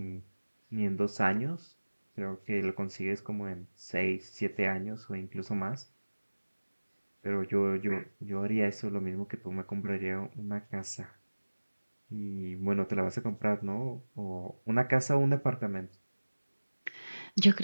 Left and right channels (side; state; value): both; inverted; correlation -1.00